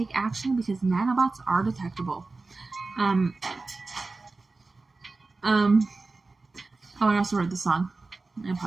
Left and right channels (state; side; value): quieter; left; 3.6 dB